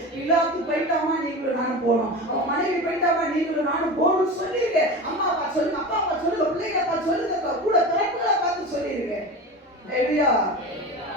பிலாத்து போயிட்டாமா, நீங்களும் நானும் போனோம், அவன் மனைவி போயிட்டாமா, நீங்களும் நானும் போகணும்னு சொல்லிருங்க. அம்மா அப்பா சொல்லுங்க, அப்பா அப்பா சொல்லுங்க, பிள்ளைங்க அப்பா சொல்லுங்க, கூட பிறப்புகளை பார்த்து சொல்லிருங்க.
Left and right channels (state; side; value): normal; both; correlation 0.29